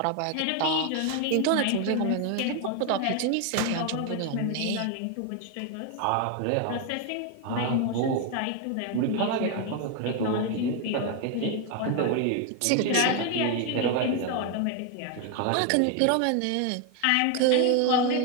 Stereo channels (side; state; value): both; different; correlation 0.01